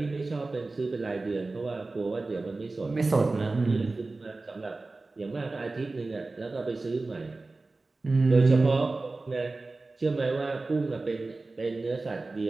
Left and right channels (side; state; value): left; quieter; 3.4 dB